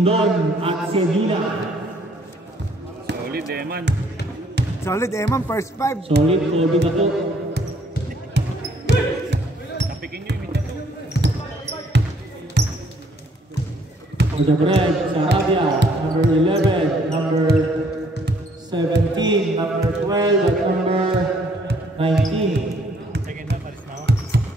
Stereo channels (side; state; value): both; normal; correlation 0.64